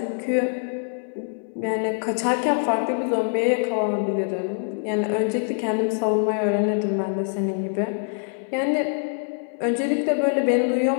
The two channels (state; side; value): silent; right; 61 dB below the other